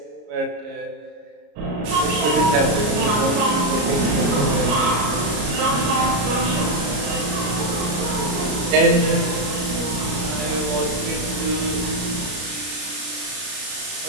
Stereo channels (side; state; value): left; late; 33 ms